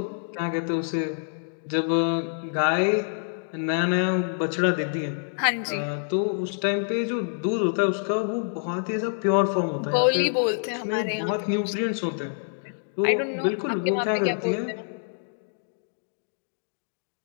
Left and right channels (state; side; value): silent; right; digital silence